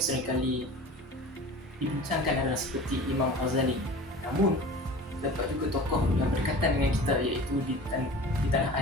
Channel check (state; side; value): normal; both; correlation 0.38